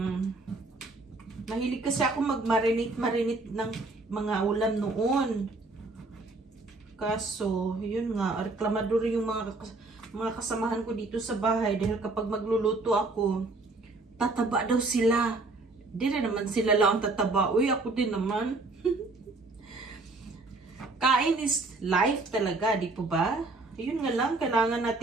mahilig kasi ako mag-marinate ng mga ulam noon. Kaso, yun nga, reklamador yung mga kasamahan ko dito sa bahay dahil kapag magluluto ako, tataba daw sila. Di rin naman sila lang tataba. Uy, ako din naman. Kain is life talaga, di po ba? Yun nga lang, kailangan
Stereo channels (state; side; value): quieter; left; 3.3 dB